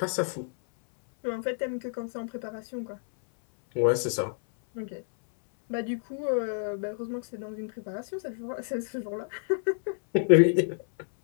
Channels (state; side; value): silent; right; 59 dB below the other